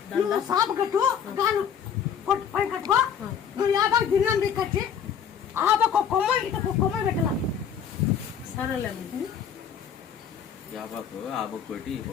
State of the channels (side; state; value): right; quieter; 7.9 dB